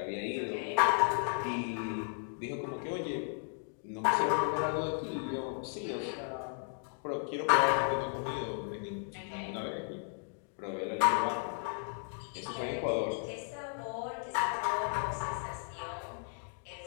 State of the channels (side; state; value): right; silent; 55 dB below the other